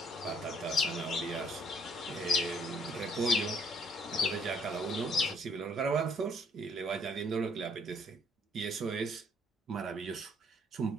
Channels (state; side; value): normal; both; correlation 0.65